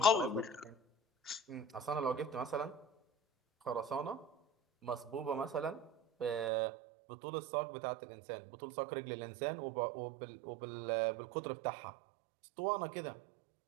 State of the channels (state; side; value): drops out; left; at 6.5 s